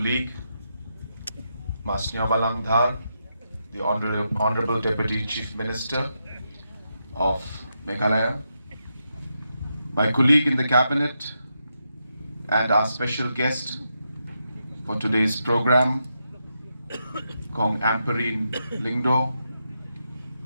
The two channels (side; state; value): both; inverted; correlation -0.84